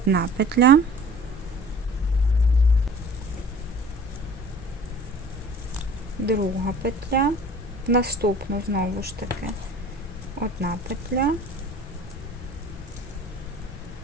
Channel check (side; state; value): both; normal; correlation 0.45